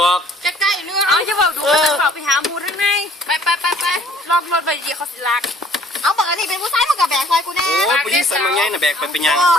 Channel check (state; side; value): normal; both; correlation 0.57